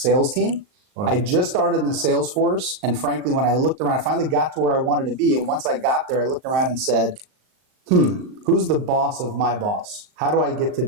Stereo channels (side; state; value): left; late; 39 ms